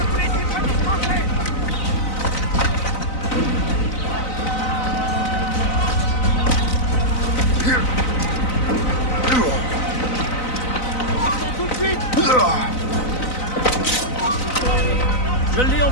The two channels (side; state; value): right; late; 4.0 ms